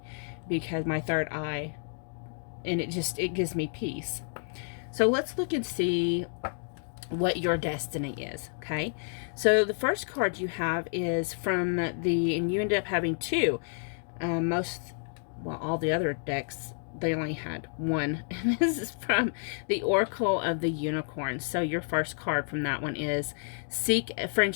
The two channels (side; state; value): right; silent; 56 dB below the other